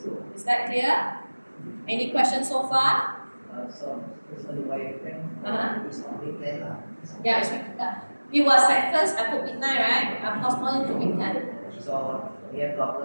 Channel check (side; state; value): both; inverted; correlation -1.00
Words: Is that clear? Any questions so far? So the wireframe is on week 10. Yeah, it's week 10. It was at first I put midnight, right? I postponed it to week 10. So we have